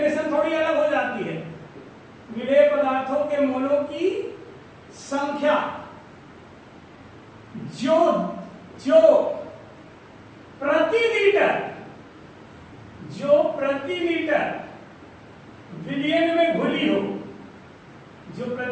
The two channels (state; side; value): identical; both; correlation 1.00